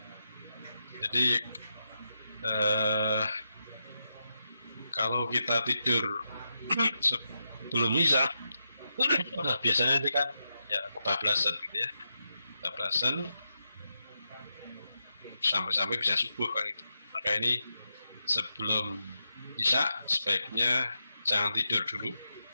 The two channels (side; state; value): both; inverted; correlation -0.86